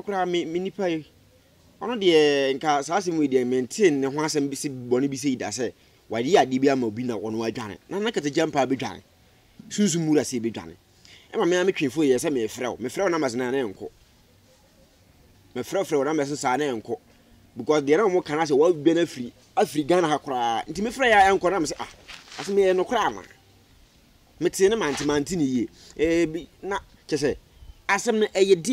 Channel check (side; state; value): both; identical; correlation 1.00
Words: me nipa yi ono de nka saase mu de maintain ne ho asem bi si bone bi se ida se wadi ade bi ama obi na wono adwane na kata jampa bi dwane sunsun mura se bi dwane emma me twefo ye se me frɛ na mazena na enko me frɛ na me se sa na enko because there are more can say what benefit African hakra nti me frɛ ya enko na me se ase me no kra ma me tie ne manti ni ye na che se asem no eye